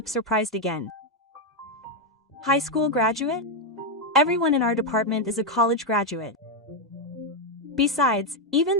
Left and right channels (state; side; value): normal; both; correlation 0.03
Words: surprised again. High school graduate? Everyone in our department is a college graduate. Besides, even